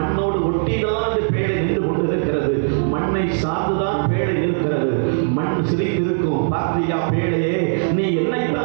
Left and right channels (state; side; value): silent; left; digital silence